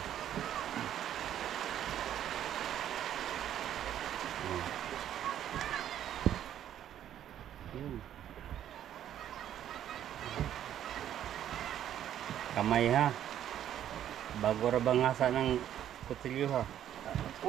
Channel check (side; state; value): left; quieter; 10.8 dB